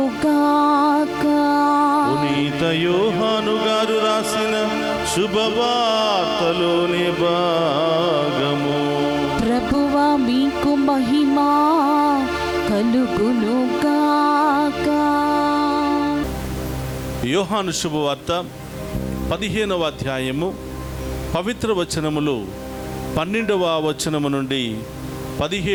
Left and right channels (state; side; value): identical; both; correlation 1.00